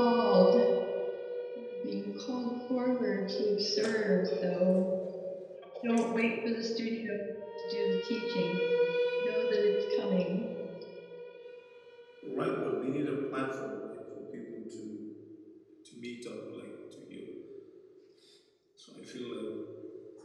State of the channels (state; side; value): identical; both; correlation 1.00